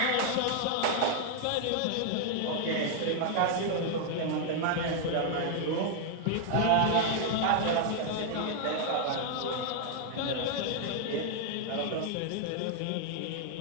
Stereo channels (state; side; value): different; both; correlation 0.00